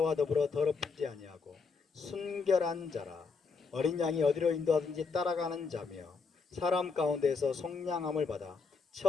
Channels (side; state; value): right; quieter; 4.9 dB